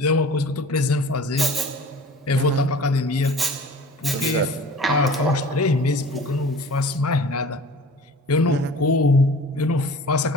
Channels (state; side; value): normal; both; correlation 0.43